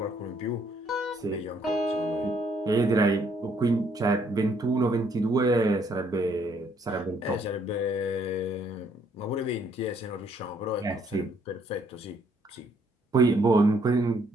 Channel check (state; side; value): normal; both; correlation 0.67